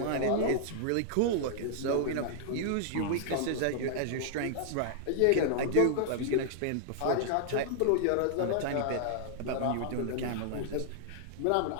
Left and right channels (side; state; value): both; different; correlation -0.01